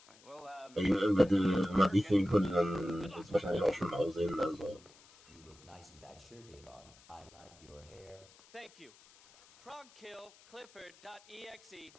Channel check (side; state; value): left; noise; hiss, 25 dB below the sound